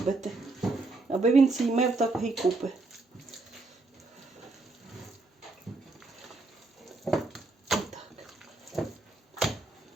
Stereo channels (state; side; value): quieter; left; 3.3 dB